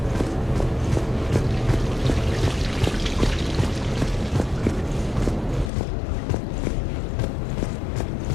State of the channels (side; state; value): right; drops out; at 5.7 s